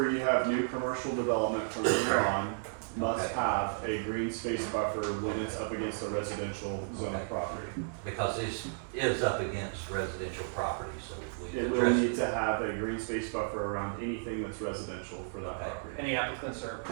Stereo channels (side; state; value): left; silent; digital silence